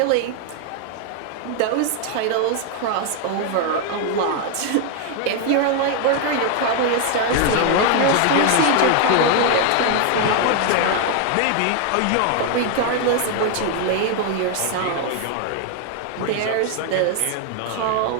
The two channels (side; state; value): both; different; correlation 0.01